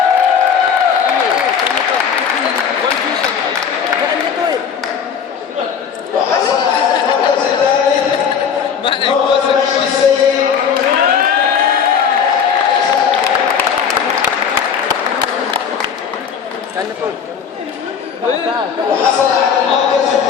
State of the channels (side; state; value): right; quieter; 7.1 dB